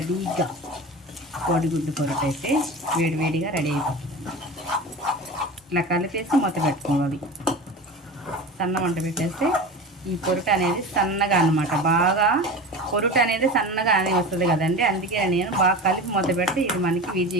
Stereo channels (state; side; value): normal; both; correlation 0.31